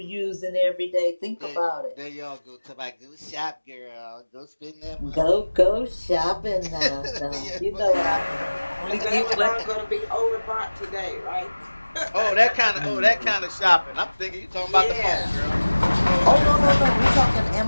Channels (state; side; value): inverted; both; correlation -1.00